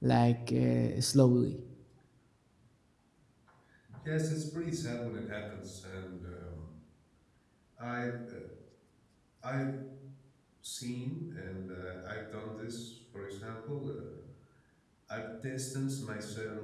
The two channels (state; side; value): identical; both; correlation 1.00